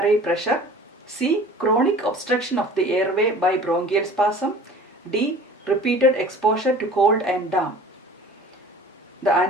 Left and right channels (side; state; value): both; normal; correlation 0.45